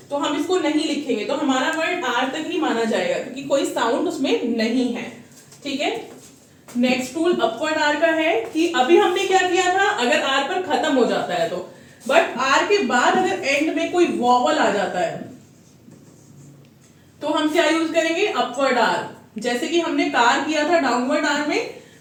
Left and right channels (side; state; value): both; identical; correlation 1.00